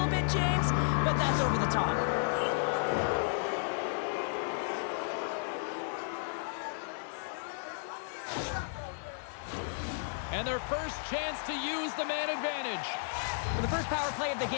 bit, James, but that's over the top. And their first chance to use the man advantage. Well, the first power play of the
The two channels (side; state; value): right; silent; digital silence